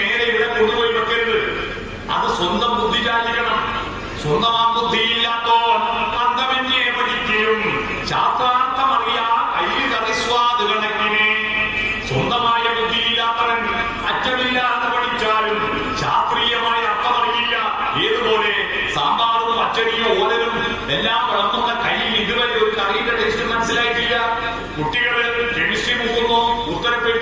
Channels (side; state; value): both; identical; correlation 1.00